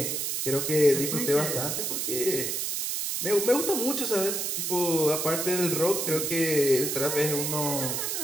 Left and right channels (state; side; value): noise; right; hiss, 1 dB below the sound